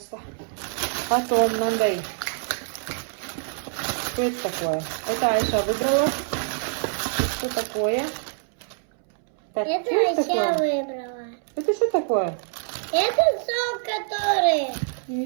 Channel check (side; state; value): left; silent; 62 dB below the other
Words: Потом мынандай. Что это такое? Это Айша выбрала. Что такое? Так, Это Айша выбрала. Это что такое? Это сок, который...